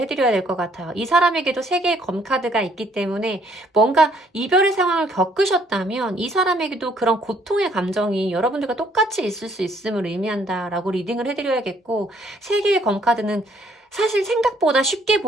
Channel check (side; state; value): both; normal; correlation 0.65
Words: 될 것 같아요. 이 사람에게도 3개의 검카드가 있기 때문에 뭔가 이별의 상황을 겪으셨다면 이 사람에게도 그런 고통의 감정이 여러분들과 똑같이 있을 수 있음을 의미한다라고 리딩을 해드려야겠고 3개의 검카드는 사실 생각보다 쉽게